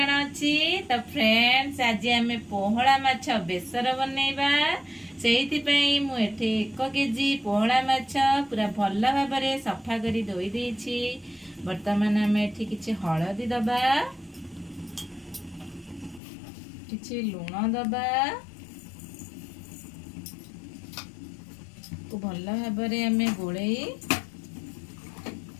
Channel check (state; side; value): drops out; right; at 16.2 s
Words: तो फ्रेंड्स आज आम पोहला माछ बेसर बनैबा सेहिति पई मु एठे 1 केजी पोहला माछ पूरा भल भाव में सफा करी धोई देछि। वर्तमान आम एठी किछि हळदी दबा, किछि लूण दबा को भल भाव में आम गोळई